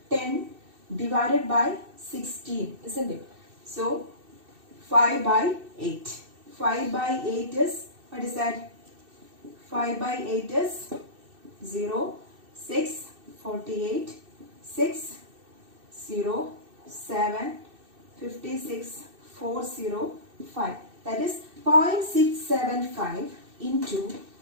10 divided by 16, isn't it? So 5 by 8. 5 by 8 is, what is that? 5 by 8 is 0, 6, 48, 6, 0, 7, 56, 405. That is 0.675 into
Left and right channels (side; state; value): left; late; 2.6 ms